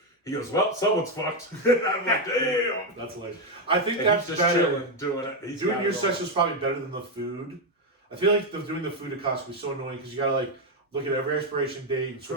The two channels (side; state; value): both; normal; correlation 0.06